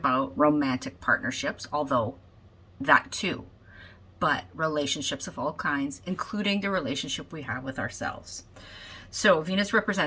romantic partnerships, although that too, but relationships of all kinds, including the relationship we have with ourselves. So Venus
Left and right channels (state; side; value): identical; both; correlation 1.00